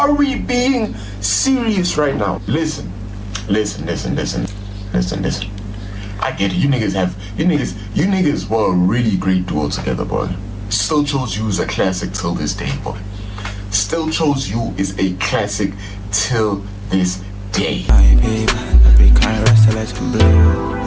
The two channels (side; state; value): both; identical; correlation 1.00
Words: we being serious right now? Listen. I get it. You niggas were a really great duo together, boy. Still Chose You is a classic till this day, boy. Still Chose You is a classic till this day.